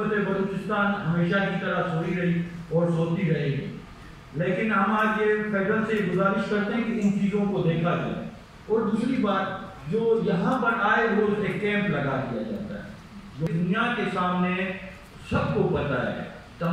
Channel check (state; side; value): identical; both; correlation 1.00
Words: بلوچستان ہمیشہ کی طرح سوئی رہی اور سوتی رہے گی۔ لیکن ہم آج یہ فیڈرل سے گزارش کرتے ہیں کہ ان چیزوں کو دیکھا جائے۔ اور دوسری بات، جو یہاں پر آئے روز ایک کیمپ لگا دیا جاتا ہے، جو دنیا کے سامنے سب کو پتہ ہے،